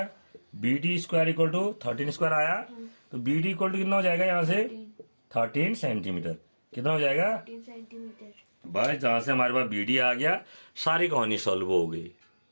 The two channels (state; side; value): inverted; both; correlation -1.00